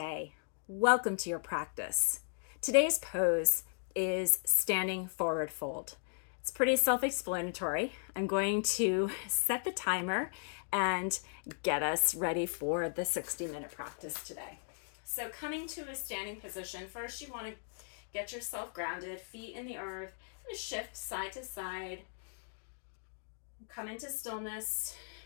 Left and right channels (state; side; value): silent; right; digital silence